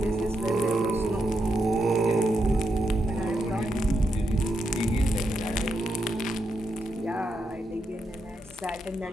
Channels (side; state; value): both; normal; correlation 0.83